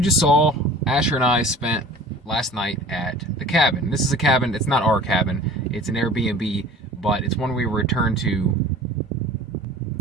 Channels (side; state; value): both; normal; correlation 0.43